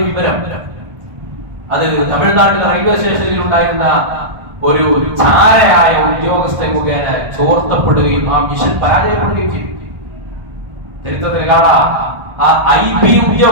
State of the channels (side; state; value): left; late; 1.4 ms